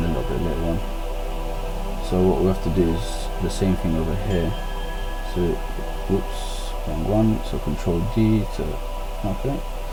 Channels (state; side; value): identical; both; correlation 1.00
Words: a little bit later on. So what we have to do is the same thing over here. So whoops, wrong one. So Control D to, okay,